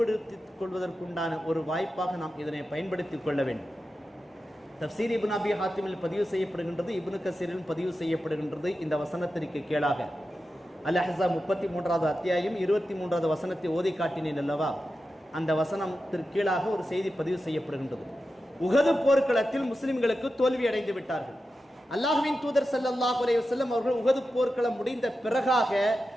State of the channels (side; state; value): both; normal; correlation 0.91